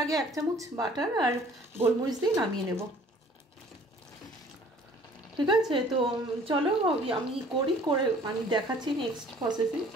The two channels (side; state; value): both; normal; correlation 0.53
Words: আগে 1 চামচ বাটার আর গোলমরিচ দিয়ে নামিয়ে নেব, ঠিক আছে? তো চলো আমি করে আমি দেখাচ্ছি নেক্সট প্রসেসিং।